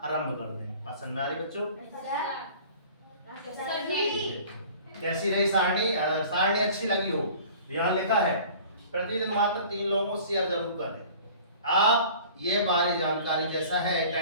आरंभ कर दें। बात समझ में आ रही बच्चों, कैसी रही सारणी, सारणी अच्छी लगी हो तो यहाँ लिखा है प्रतिदिन मात्र 3 लोगों को शेयर जरूर करें। आप ये बारी जानकारी जैसा है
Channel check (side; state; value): both; inverted; correlation -0.45